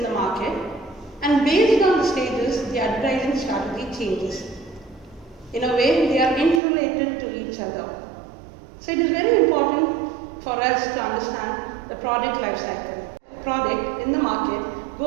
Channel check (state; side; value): drops out; left; at 6.6 s